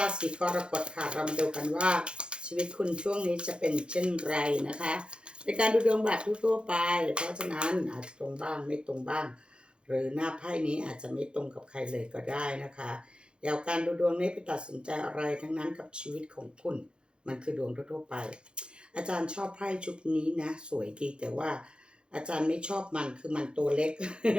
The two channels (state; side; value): late; left; 0.053 ms